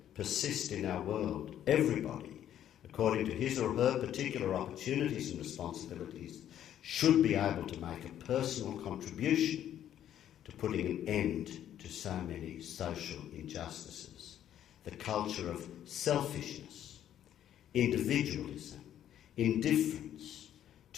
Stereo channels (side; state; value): right; quieter; 10.8 dB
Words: persist in our world. Everybody, according to his or her particular opportunities and responsibilities, should be able to make a personal contribution to putting an end to so many social injustices. The culture of selfishness, individualism, indifference